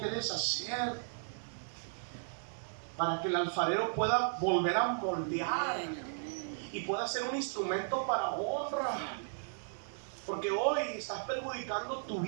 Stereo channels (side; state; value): left; silent; 54 dB below the other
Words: deshacer para que el alfarero pueda volver a moldear y pueda ser un instrumento para honra. Porque hoy estás perjudicando tu